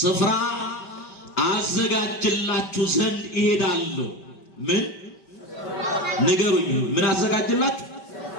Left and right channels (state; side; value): late; right; 5.1 ms